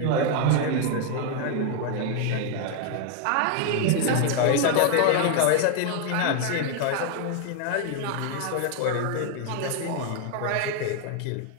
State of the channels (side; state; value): both; different; correlation 0.00